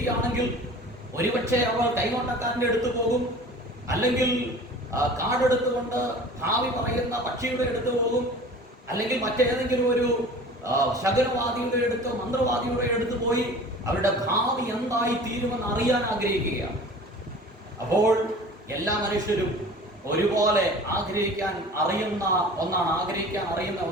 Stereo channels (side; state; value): both; normal; correlation 0.42